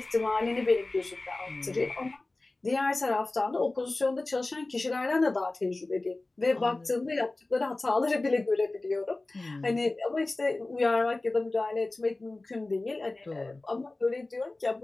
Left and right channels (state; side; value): quieter; right; 3.0 dB